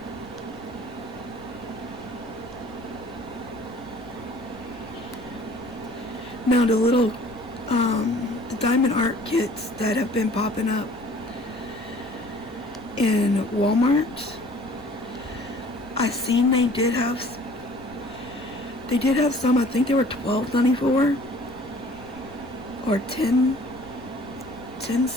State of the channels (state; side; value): noise; left; rumble, 21 dB below the sound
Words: Now the little, the diamond art kits that have been popping up in Walmart, I seen they did have some, I think they were $12.94 or 10